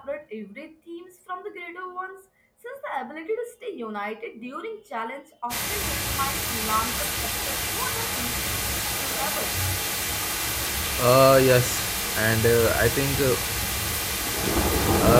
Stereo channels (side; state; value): both; identical; correlation 1.00